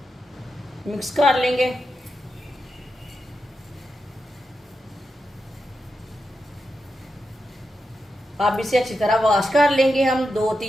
मिक्स कर लेंगे। अब इसे अच्छी तरह वॉश कर लेंगे। हम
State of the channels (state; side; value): normal; both; correlation 0.88